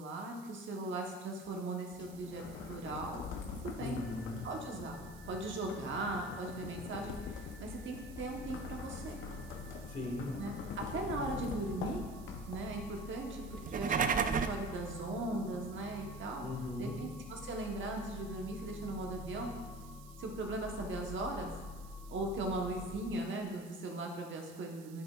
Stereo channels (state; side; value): noise; right; hiss, 20 dB below the sound